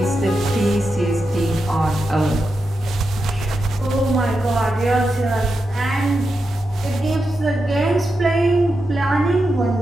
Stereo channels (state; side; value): normal; both; correlation 0.88